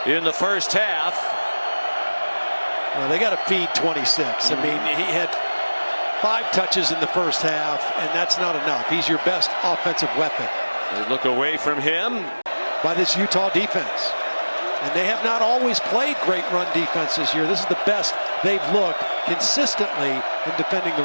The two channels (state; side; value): inverted; both; correlation -1.00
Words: in the first half. Well, they got to feed 26. I mean, he had 5 touches in the first half, and that's not enough. He's your best offensive weapon. They look away from him. By this Utah defense. And they have not always played great run defense this year. This is the best they've looked consistently in defending the